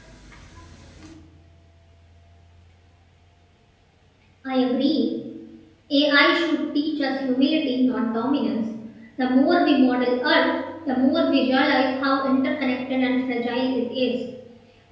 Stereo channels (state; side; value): identical; both; correlation 1.00